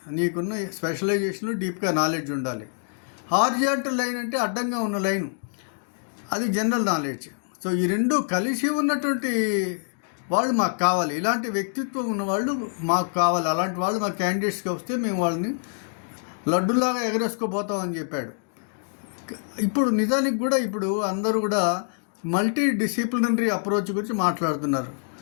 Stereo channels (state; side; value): silent; right; digital silence